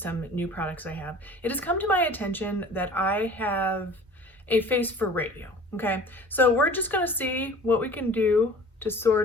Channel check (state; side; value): normal; both; correlation 0.45